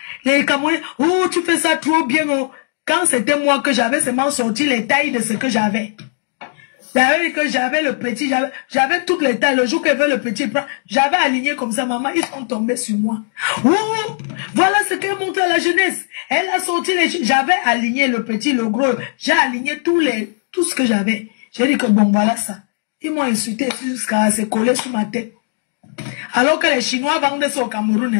Les Camerounais. Ou tu fais ça trop bien. Oh. Quand c'était moi que j'avais seulement sorti les tailles de ce que j'avais. J'avais dit que j'avais le petit, j'avais toutes les tailles. Le jour qu'elle veut le petit, j'avais aligné comme ça, maman, ils sont tombés sur moi. Ouh, voilà ce qu'elle montre à la jeunesse. Elle a sorti j'avais aligné le petit, le gros. J'ai aligné tout ce que j'avais. J'ai dit que bon, voilà ça. Ils m'ont insulté jusqu'à se coller sur ma tête. Alors que les Chinois vendent ça au Cameroun.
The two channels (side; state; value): right; silent; 64 dB below the other